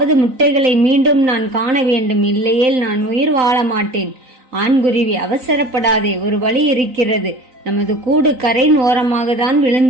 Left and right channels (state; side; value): late; left; 3.9 ms